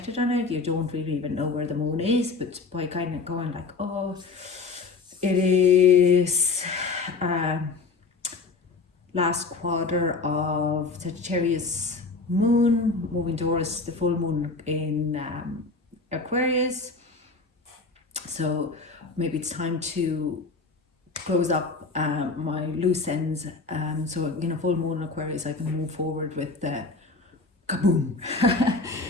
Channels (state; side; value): quieter; right; 4.0 dB